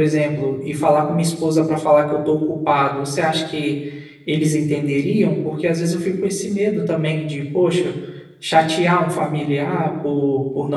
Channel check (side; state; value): both; identical; correlation 1.00